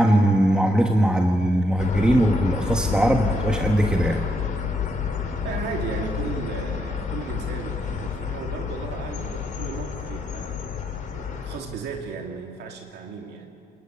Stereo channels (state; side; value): normal; both; correlation 0.78